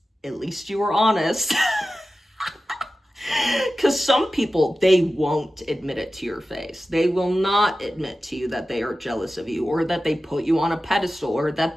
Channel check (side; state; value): both; normal; correlation 0.94